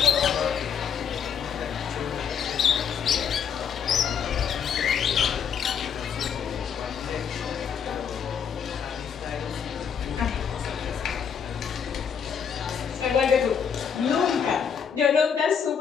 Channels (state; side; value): quieter; right; 7.3 dB